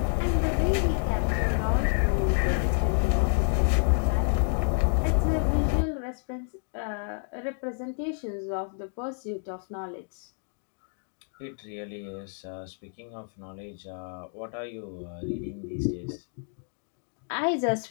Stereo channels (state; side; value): silent; right; 56 dB below the other